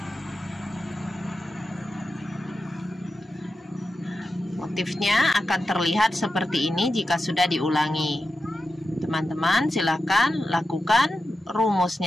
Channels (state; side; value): normal; both; correlation 0.91